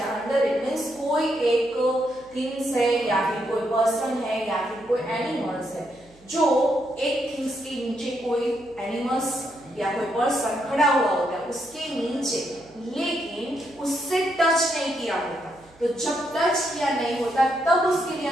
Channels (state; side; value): noise; right; hum, 28 dB below the sound